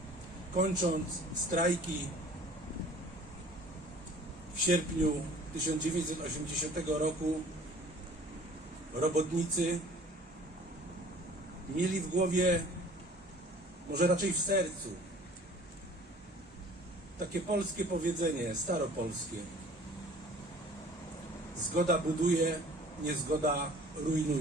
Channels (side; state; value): both; normal; correlation 0.50